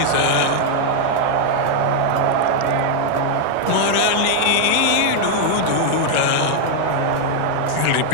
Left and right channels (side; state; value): both; different; correlation 0.00